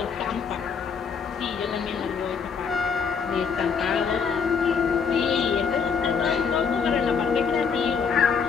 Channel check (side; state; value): right; quieter; 6.1 dB